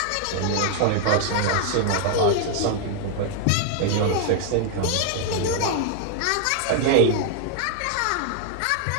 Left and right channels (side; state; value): both; different; correlation 0.00